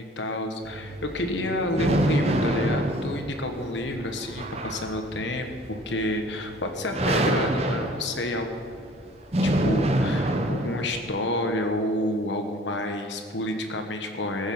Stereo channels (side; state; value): both; normal; correlation 0.49